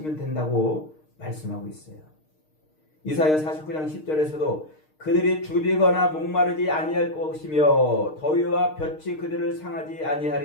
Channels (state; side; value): late; right; 6.5 ms